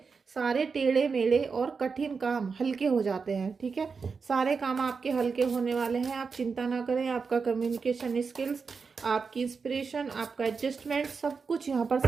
सारे टेढ़े मेढ़े और कठिन काम हल्के हो जाते हैं। ठीक है, सारे काम आपके हल्के होने वाले हैं, आप चिंता ना करें। आपका कम्युनिकेशन स्किल्स, आपकी इंस्पिरेशन, आपका एडजस्टमेंट, सब कुछ यहाँ पर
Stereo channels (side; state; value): left; quieter; 5.2 dB